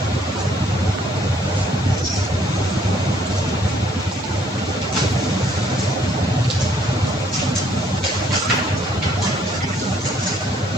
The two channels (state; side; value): normal; both; correlation 0.64